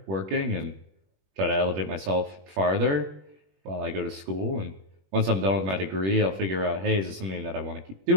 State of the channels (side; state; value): left; late; 21 ms